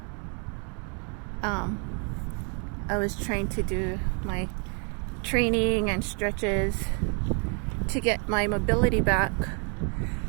I was trying to do my training and stretches to get my mobility back.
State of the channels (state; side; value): quieter; left; 38.4 dB